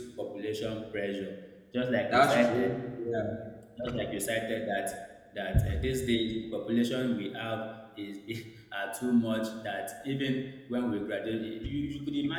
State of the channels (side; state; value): both; identical; correlation 1.00